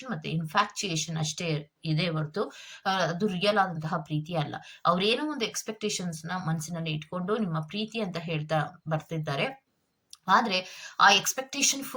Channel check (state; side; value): identical; both; correlation 1.00